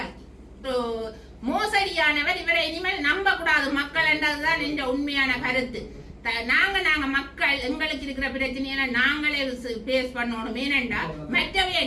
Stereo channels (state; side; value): identical; both; correlation 1.00